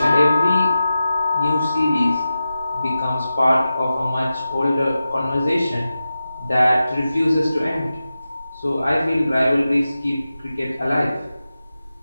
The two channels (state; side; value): inverted; both; correlation -0.93